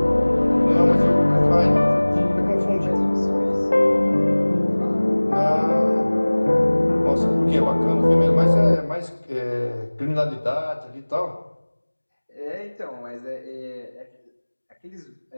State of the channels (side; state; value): both; inverted; correlation -1.00